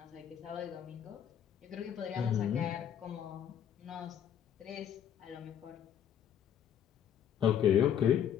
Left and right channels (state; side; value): quieter; right; 9.3 dB